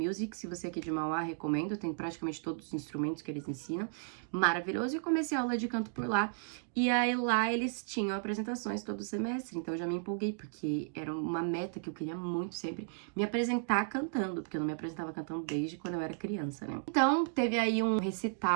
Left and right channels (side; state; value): left; silent; digital silence